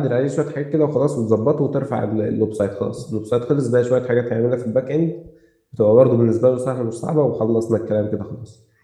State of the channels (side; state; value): both; identical; correlation 1.00